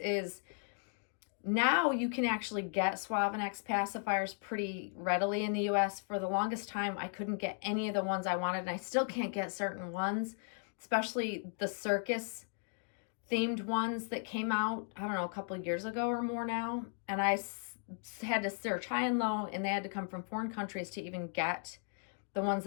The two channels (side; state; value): right; silent; 54 dB below the other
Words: now you can actually get Suavenex pacifiers pretty readily in the US. For the longest time, I couldn't get any of the ones I wanted, and I still can't get certain ones, especially the circus themed ones that came out, I don't know, a couple of years ago or more now. And I had to search high and low, and they had to come from foreign countries to even get the ones